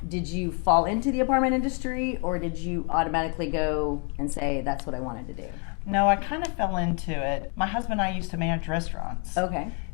Did you fall into the apartment industry, or did you automatically go and say that's what I wanted to do? No, I kind of fell into it. My husband and I used to manage restaurants. Okay.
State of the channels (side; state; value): right; quieter; 35.4 dB